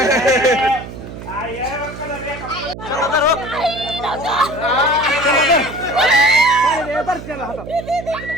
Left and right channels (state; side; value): noise; right; hum, 12 dB below the sound